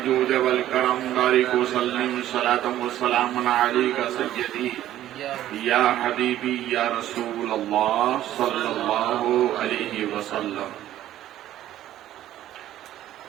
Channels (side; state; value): left; quieter; 12.9 dB